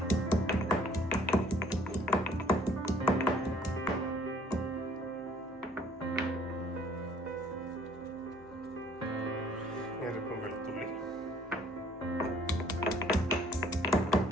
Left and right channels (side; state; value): both; normal; correlation 0.59